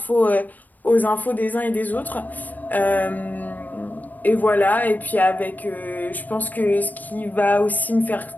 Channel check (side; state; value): right; late; 0.084 ms